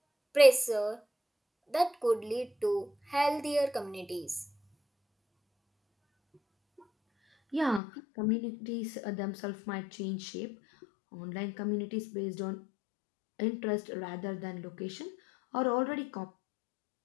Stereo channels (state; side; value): drops out; right; at 7.8 s